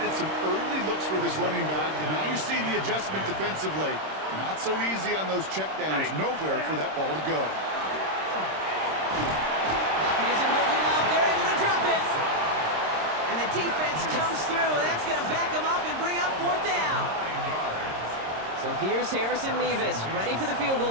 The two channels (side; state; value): left; late; 26 ms